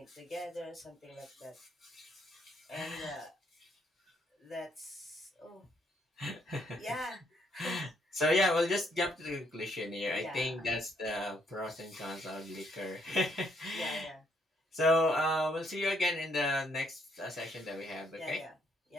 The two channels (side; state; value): both; normal; correlation 0.70